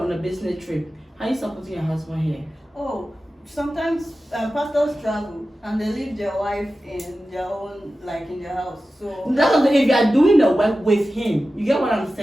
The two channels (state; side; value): normal; both; correlation 0.94